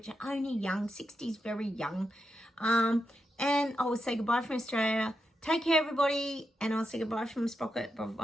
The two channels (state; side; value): normal; both; correlation 0.86